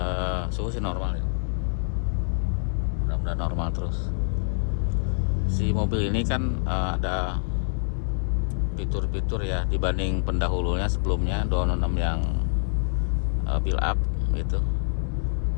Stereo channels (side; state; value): right; silent; digital silence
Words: Suhu sih normal ya, mudah-mudahan normal terus. Si mobil ini kan ada fitur-fitur ya dibanding pendahulunya sebelumnya 206 yang build up gitu.